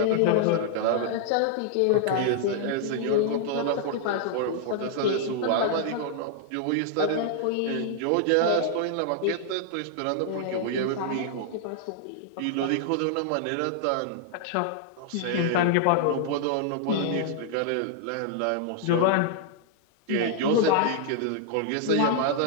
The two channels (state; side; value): different; both; correlation -0.01